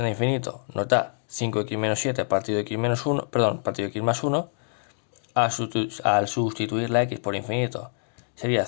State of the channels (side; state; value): right; silent; digital silence